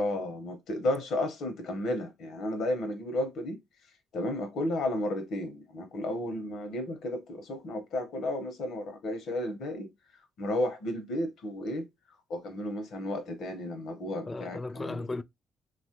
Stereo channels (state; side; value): normal; both; correlation 0.68